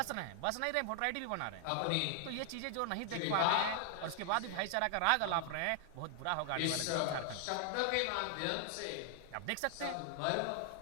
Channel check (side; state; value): both; different; correlation 0.00